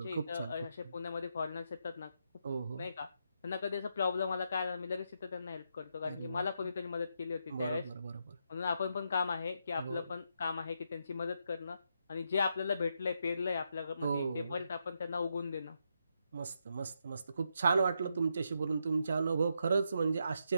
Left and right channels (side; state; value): both; inverted; correlation -0.81